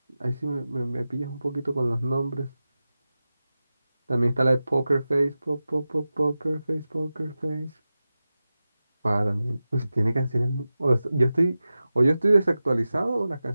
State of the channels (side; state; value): both; inverted; correlation -0.94